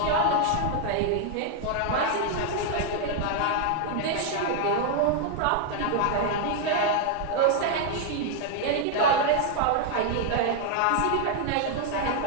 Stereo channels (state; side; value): different; both; correlation 0.00